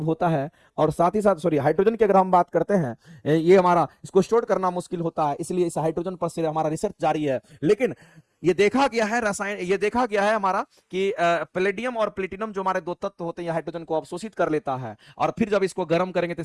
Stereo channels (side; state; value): both; identical; correlation 1.00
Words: होता है, और साथ ही साथ सॉरी हाइड्रोजन की अगर हम बात करते हैं, ये हमारा इसको स्टोर करना मुश्किल होता है, इसलिए इस हाइड्रोजन पर से हमारा रिसर्च जारी है। लेकिन ये देखा गया है रसायन, ये देखा गया है हमारा कि पैलेडियम और प्लेटिनम जो हमारे दो तत्व होते हैं हाइड्रोजन को अवशोषित कर लेता है, और फिर जब इसको गर्म करेंगे तो